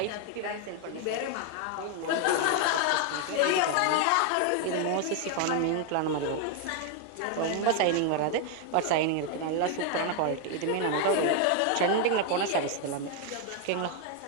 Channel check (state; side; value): different; both; correlation 0.00